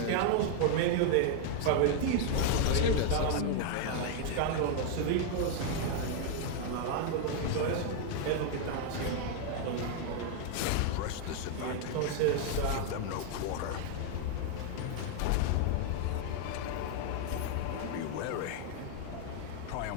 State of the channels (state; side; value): different; both; correlation 0.00